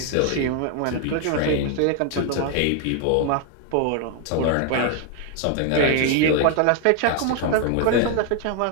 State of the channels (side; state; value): both; different; correlation 0.01